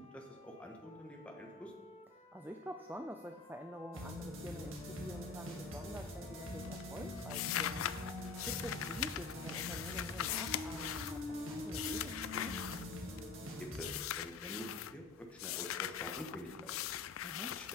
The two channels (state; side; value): quieter; right; 4.6 dB